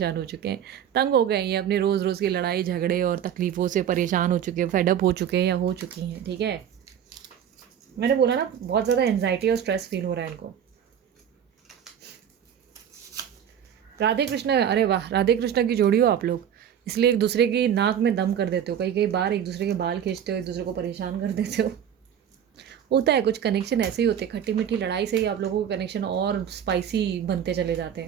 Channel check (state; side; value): quieter; left; 9.1 dB